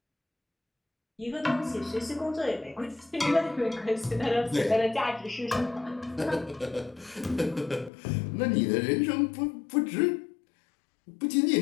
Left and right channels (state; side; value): drops out; right; at 7.9 s